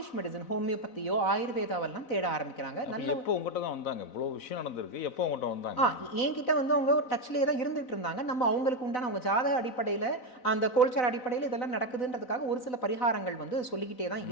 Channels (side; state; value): right; late; 4.0 ms